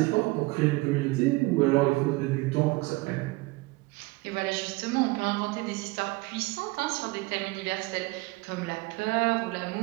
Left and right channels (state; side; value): quieter; left; 23.3 dB